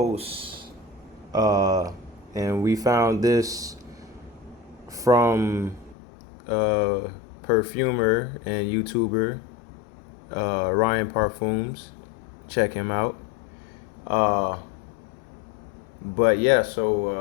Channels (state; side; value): drops out; right; at 6.0 s